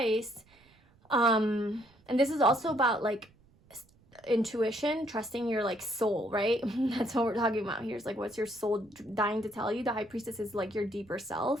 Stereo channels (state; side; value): noise; right; rumble, 30 dB below the sound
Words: and this is also about like intuition, trusting your like soul, right? That's what we're talking about here. Is like, what's your soul dying to tell you? The high priestess is like your deeper